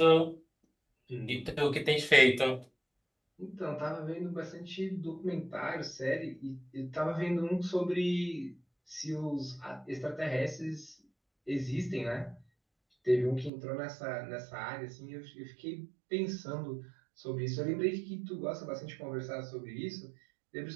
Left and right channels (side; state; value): left; drops out; at 13.5 s